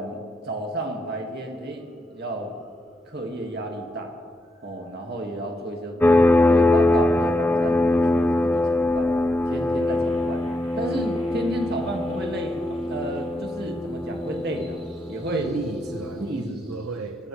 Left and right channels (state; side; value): normal; both; correlation 0.82